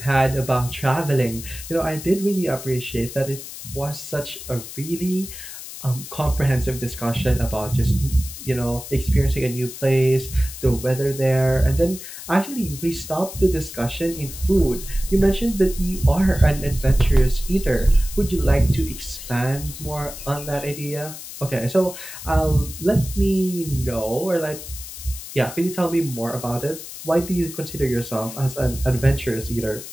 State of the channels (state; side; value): noise; left; hiss, 12 dB below the sound